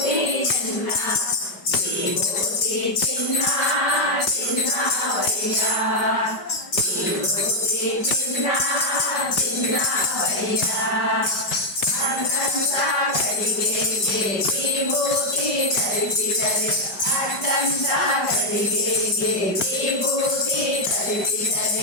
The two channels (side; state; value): right; late; 5.1 ms